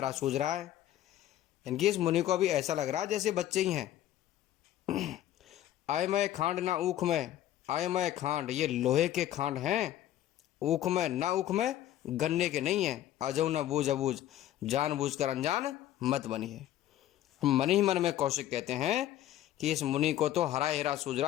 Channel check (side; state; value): right; quieter; 12.7 dB